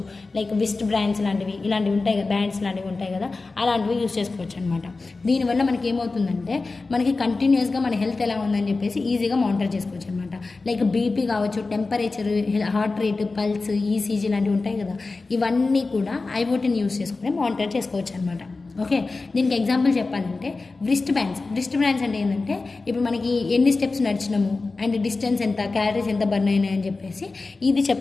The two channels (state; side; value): quieter; right; 3.7 dB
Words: లైక్ విస్ట్ బ్రాండ్స్ లాంటివి ఇలాంటివి ఉంటాయి కదా, బ్యాండ్స్ లాంటివి ఉంటాయి కదా, అలాంటివి యూస్ చేసుకోవచ్చు అనమాట. దీనివల్ల మనకి ఏమవుతుందంటే మనకి కంటిన్యూస్గా మన హెల్త్ ఎలా ఉందని చెప్పేసి ఈజీగా మానిటర్ చేసుకోవచ్చు అనమాట. లైక్ బీపీ కావచ్చు, temperature, heart rate, pulse, ECG లాంటివి ఉంటాయి కదా, ఇవన్నీ కూడా ఐఓటీని యూస్ చేసుకుని మానిటర్ చేసుకోవచ్చు అనమాట. ఓకే, దీనికి ఎగ్జాంపుల్ చెప్పాలంటే వ్రిస్ట్ బ్యాండ్స్ అంటే ఏంటంటే ఇప్పుడు మనకి ఎన్ని స్టెప్స్ నడిచినాము అండ్ డిస్టెన్స్ ఎంత, క్యాలరీస్ ఎంత బర్న్ అయినాయి అని చెప్పేసి ఇది